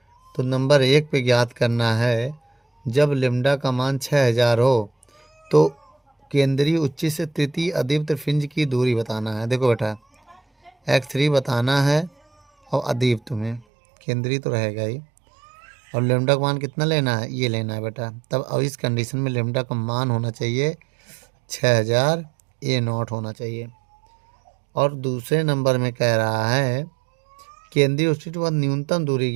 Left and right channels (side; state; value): left; drops out; at 13.7 s